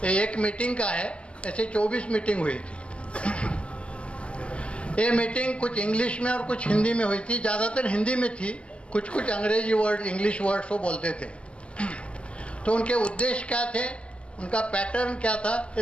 एक मीटिंग का है, ऐसे 24 मीटिंग हुई थी। ये मीटिंग कुछ इंग्लिश में और कुछ हिंदी में हुई थी, ज़्यादातर हिंदी में थी, कुछ कुछ अंग्रेजी वर्ड इंग्लिश वर्ड्स वो बोलते थे। तो उनके उद्देश्य क्या थे, उनका पैटर्न क्या था, ये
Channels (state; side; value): late; right; 0.059 ms